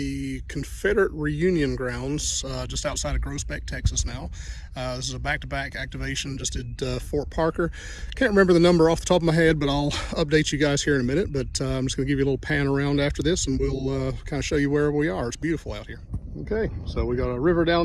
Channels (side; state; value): both; identical; correlation 1.00